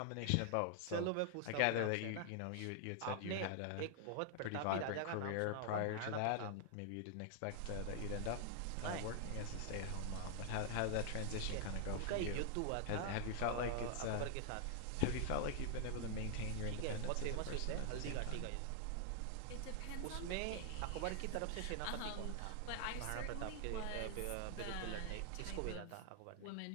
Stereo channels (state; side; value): different; both; correlation 0.00